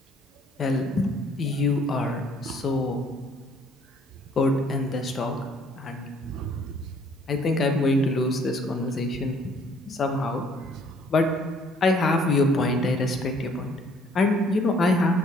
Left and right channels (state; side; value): normal; both; correlation 0.60